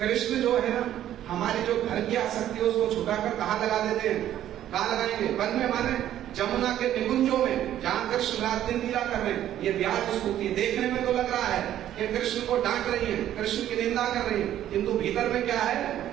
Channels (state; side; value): quieter; left; 11.8 dB